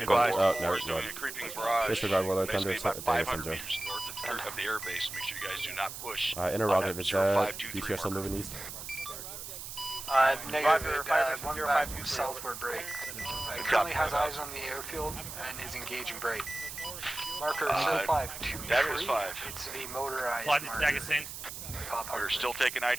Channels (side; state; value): right; noise; hiss, 9 dB below the sound